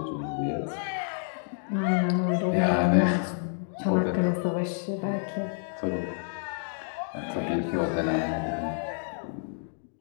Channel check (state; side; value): silent; right; digital silence